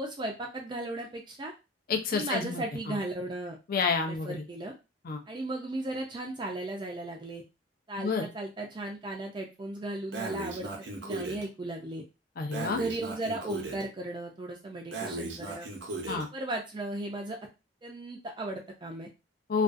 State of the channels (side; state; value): both; normal; correlation 0.35